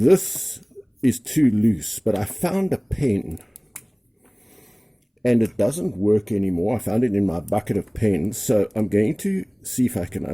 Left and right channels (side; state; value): both; identical; correlation 1.00